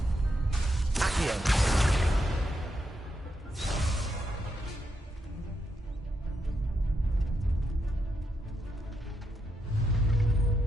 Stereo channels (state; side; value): normal; both; correlation 0.82